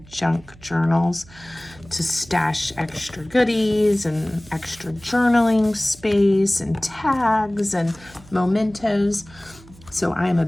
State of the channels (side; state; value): right; noise; hum, 23 dB below the sound